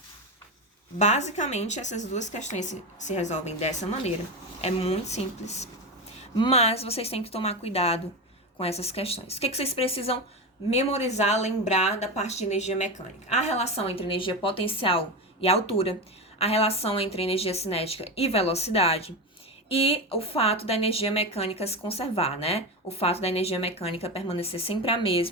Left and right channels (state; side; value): normal; both; correlation 0.18